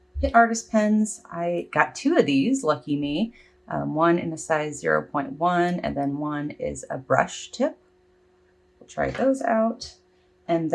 Pitt Artist Pens. I got two of these, lucky me. One in a size 0.1, and then one is a brush tip. We'll try those out. And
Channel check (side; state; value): both; identical; correlation 1.00